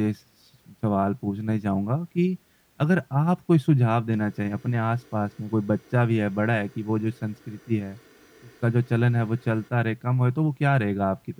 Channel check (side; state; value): both; identical; correlation 1.00